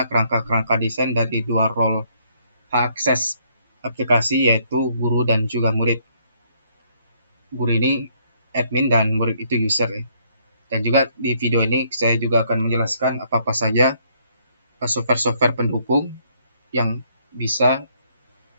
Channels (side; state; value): both; inverted; correlation -0.68